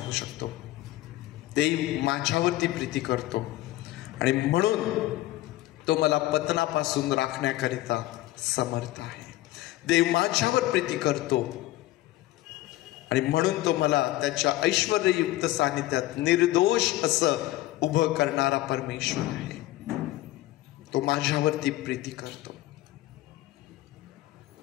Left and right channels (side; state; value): right; quieter; 16.6 dB